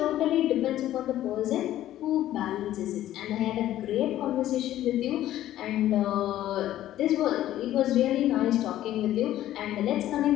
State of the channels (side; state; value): right; quieter; 13.2 dB